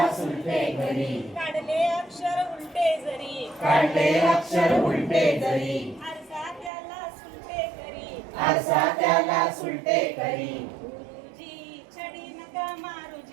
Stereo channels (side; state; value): left; drops out; at 6.7 s